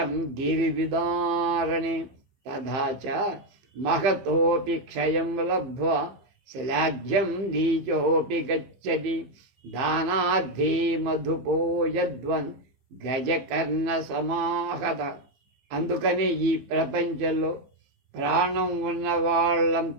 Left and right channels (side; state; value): left; late; 15 ms